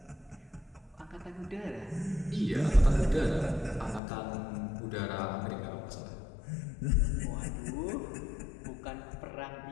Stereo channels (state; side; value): drops out; right; at 4.0 s